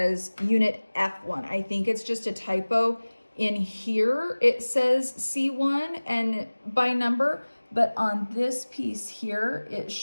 unit F1. I think it's just a typo. In here, it says C1 and by number, but on this piece here, it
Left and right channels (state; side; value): inverted; both; correlation -1.00